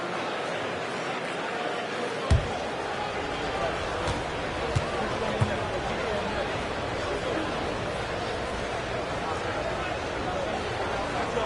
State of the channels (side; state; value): both; identical; correlation 1.00